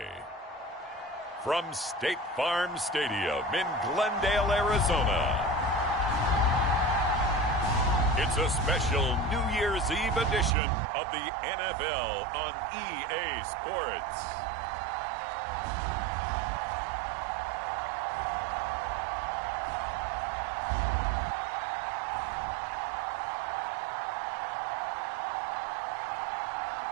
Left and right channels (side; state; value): left; drops out; at 10.6 s